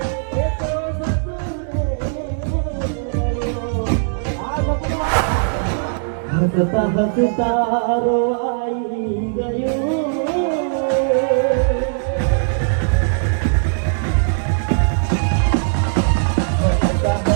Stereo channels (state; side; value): silent; left; digital silence